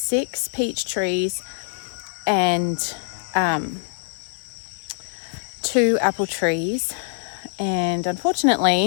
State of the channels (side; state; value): right; silent; 63 dB below the other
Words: peach trees and 2 apple trees. And